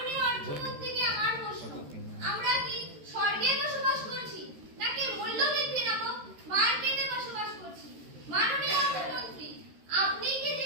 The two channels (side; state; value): left; late; 13 ms